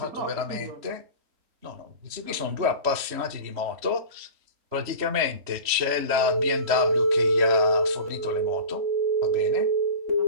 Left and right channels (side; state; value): left; late; 3.1 ms